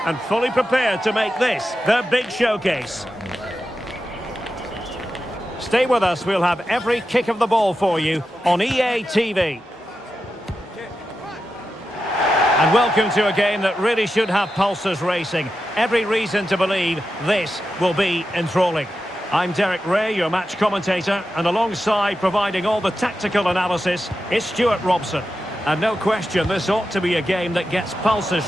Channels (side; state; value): both; normal; correlation 0.90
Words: and fully prepared to make this their big showcase. Stay with us, we'll have every kick of the ball for you on EA TV. And welcome to a game that really should have pulses racing. Every reason to believe this will be enthralling. I'm Derek Ray, your match commentator, and alongside providing all the tactical analysis is Stuart Robson. And no question, this ought to be a game that gets pulses